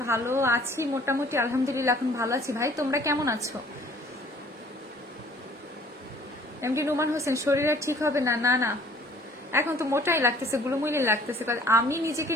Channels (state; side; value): normal; both; correlation 0.55